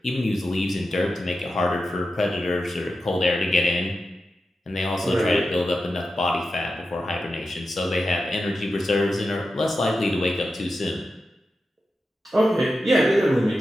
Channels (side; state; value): both; normal; correlation 0.91